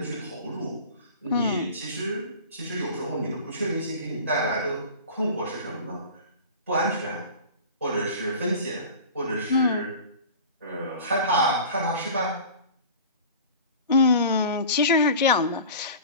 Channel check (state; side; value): inverted; both; correlation -0.38